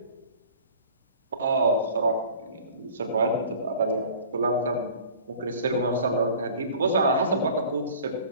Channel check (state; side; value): inverted; both; correlation -0.45